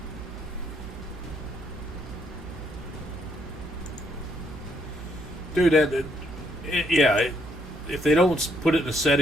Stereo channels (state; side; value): normal; both; correlation 0.71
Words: Dude, yeah, if they don't put it in the